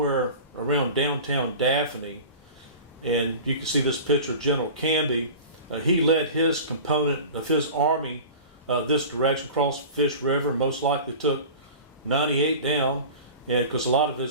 around downtown Daphne. And you can see this picture of General Canby. He led his component of his army this direction across Fish River, most likely took 98 down, and because a lot of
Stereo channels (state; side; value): inverted; both; correlation -0.36